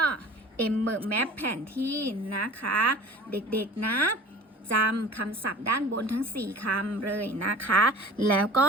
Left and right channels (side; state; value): both; normal; correlation 0.42